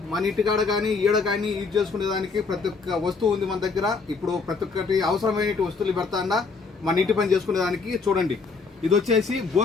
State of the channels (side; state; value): right; quieter; 4.6 dB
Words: మన ఇంటికాడ కానీ ఈడ కానీ యూజ్ చేసుకునే దానికి ప్రతి ఒక్క వస్తువు ఉంది మన దగ్గర. ఇప్పుడు ప్రతి ఒక్కటి అవసరమైన వస్తువులు పెడతా అన్న మన ఇంటి పని చేసుకునే దానికి. చూడండి, ఇది వచ్చేసి